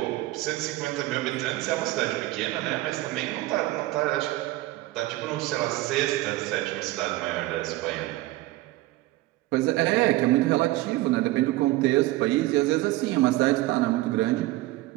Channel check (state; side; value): quieter; left; 18.1 dB